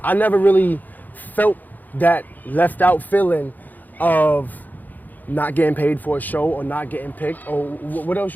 I never really felt that left out feeling of not getting paid for a show or not getting picked. Or what else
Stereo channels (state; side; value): late; right; 0.084 ms